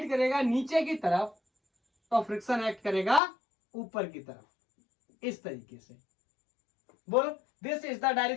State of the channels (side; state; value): right; drops out; at 3.2 s